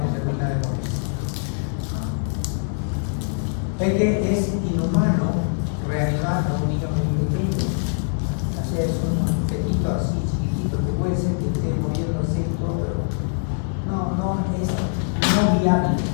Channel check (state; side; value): silent; right; digital silence